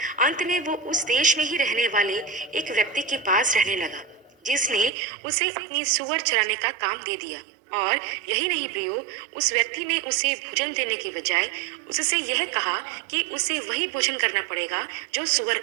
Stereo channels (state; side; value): drops out; left; at 4.9 s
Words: अंत में वो उस देश में ही रहने वाले एक व्यक्ति के पास रहने लगा जिसने उसे अपनी सुअर चराने का काम दे दिया। और यही नहीं प्रियो, उस व्यक्ति ने उसे भोजन देने के बजाय उससे यह कहा कि उसे वही भोजन करना पड़ेगा जो सुअर